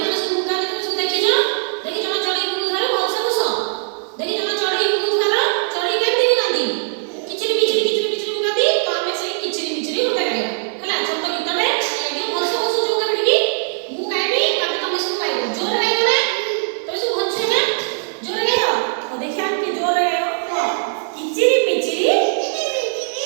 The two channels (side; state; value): left; silent; digital silence